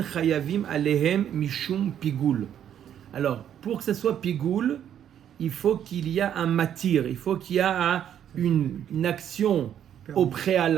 chayavim alehem mishum pigoul. Alors, pour que ce soit pigoul, il faut qu'il y ait un matir, il faut qu'il y ait une action au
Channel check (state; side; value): quieter; left; 9.8 dB